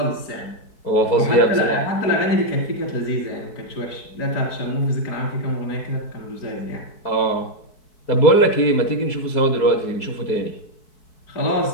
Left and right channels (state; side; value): late; right; 4.6 ms